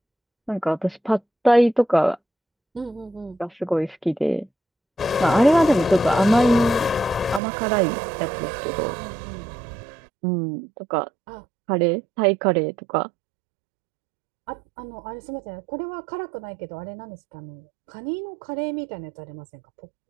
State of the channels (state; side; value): drops out; left; at 7.4 s